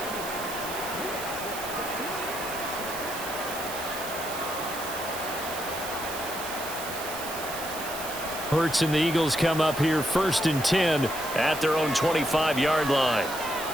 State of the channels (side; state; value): right; noise; hiss, 9 dB below the sound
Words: Hurts and the Eagles come up here 1st and 10 at their own 25-yard line.